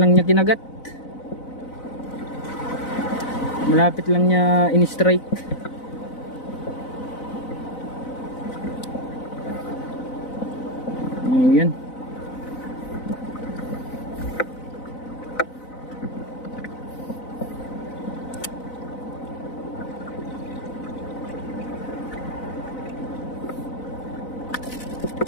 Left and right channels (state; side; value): late; right; 4.0 ms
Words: niya kinagat. Malapit lang niya in-strike. Ayan.